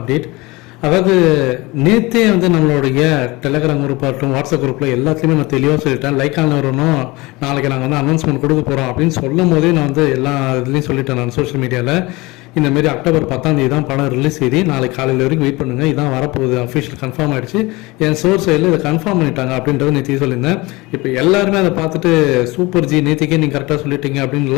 அதாவது நேற்றே வந்து நம்மளுடைய டெலகிராம் குரூப் ஆகட்டும், வாட்ஸ்அப் குரூப்பில் எல்லாத்துலேயுமே நான் தெளிவாக சொல்லிட்டேன். லைக் வரணும், நாளைக்கு நாங்கள் வந்து அனௌன்ஸ்மெண்ட் கொடுக்க போகிறோம் அப்படின்னு சொல்லும் போதே நான் வந்து எல்லா இதுலேயும் சொல்லிட்டேன். நான் சோஷியல் மீடியாவில் இந்தமாரி அக்டோபர் 10 தான் படம் ரிலீஸ் செய்தி. நாளைக்கு காலையில் வரைக்கும் வெயிட் பண்ணுங்கள், இதான் வரப்போகுது, அஃபிஷியல் கன்ஃபார்ம் ஆகிடுச்சு, என் சோர்ஸ் சைடில் இதை கன்ஃபார்ம் பண்ணிட்டாங்க அப்படின்றத நேற்று சொல்லியிருந்தேன். இப்போ எல்லாருமே அதை பார்த்துட்டு சூப்பர் ஜி நேற்றுக்கே நீங்கள் கரெக்டாக சொல்லிட்டீங்க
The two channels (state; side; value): quieter; right; 22.7 dB